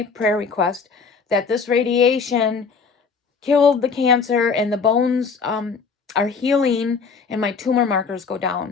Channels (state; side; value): quieter; right; 5.2 dB